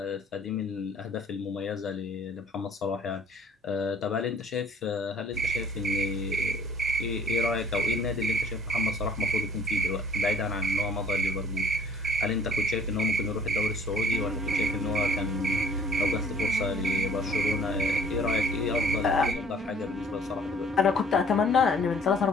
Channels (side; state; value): both; normal; correlation 0.55